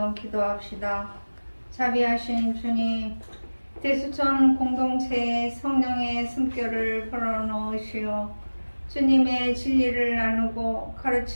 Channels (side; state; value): both; inverted; correlation -1.00